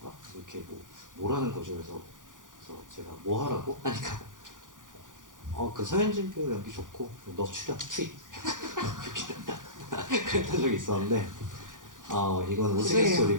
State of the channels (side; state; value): left; late; 0.88 ms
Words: 이렇게 뭐라는 거죠. 그래서 제가 뭐 하라고? 하니까 그 서현진 배우 연기 좋고 너 출연 투입 그랬던 적이 있었는데 이건